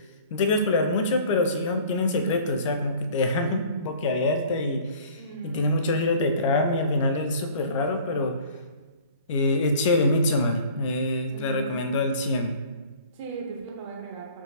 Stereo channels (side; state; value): both; inverted; correlation -0.49